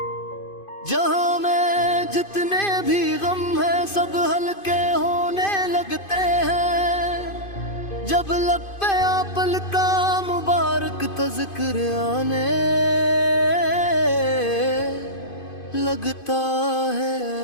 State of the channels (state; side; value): late; right; 2.5 ms